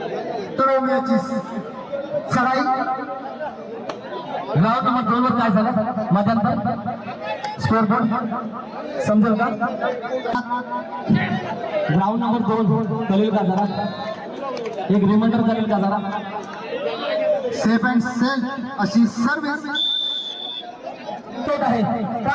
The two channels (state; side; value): identical; both; correlation 1.00